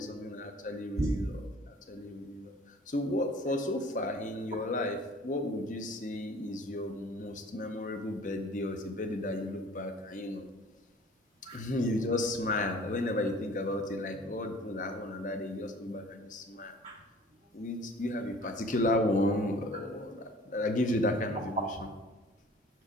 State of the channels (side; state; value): both; normal; correlation 0.49